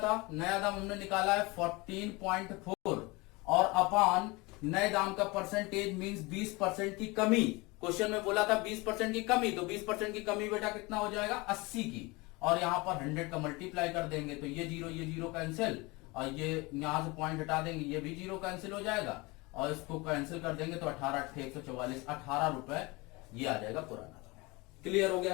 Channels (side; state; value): right; quieter; 24.7 dB